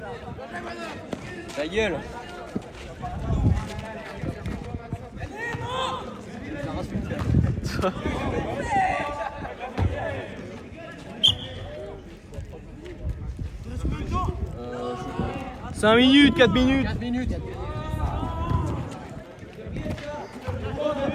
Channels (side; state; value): both; identical; correlation 1.00